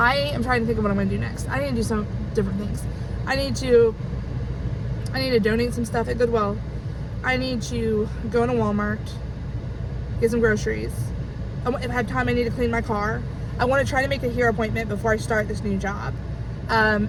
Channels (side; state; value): both; identical; correlation 1.00